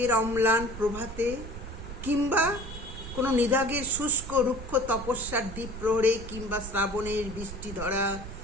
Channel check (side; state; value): right; noise; rumble, 10 dB below the sound